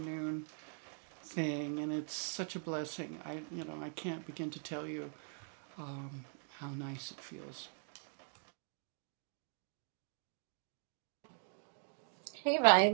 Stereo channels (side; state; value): left; silent; 50 dB below the other